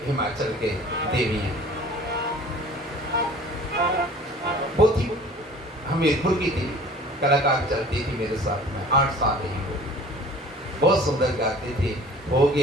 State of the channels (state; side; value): normal; both; correlation 0.46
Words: हिमाचल के देवी हैं, बहुत ही हमीरपुर की थी, कलाकार चलती थी मेरे साथ में, 8 साल रही वो, बहुत सुंदर गाती थी। हो